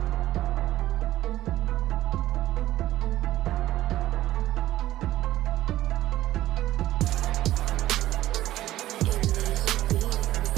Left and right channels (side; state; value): left; quieter; 14.8 dB